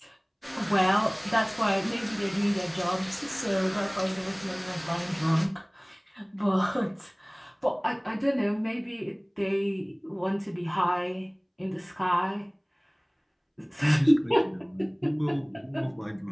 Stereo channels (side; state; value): both; identical; correlation 1.00